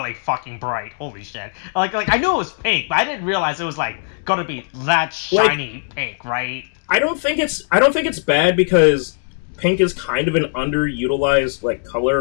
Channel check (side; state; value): right; silent; 66 dB below the other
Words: fucking bright. Holy shit! Like I knew it was pink, but I didn't realize it was like gonna be that shiny pink, right? I don't think it's bad because pink is kind of an underutilized like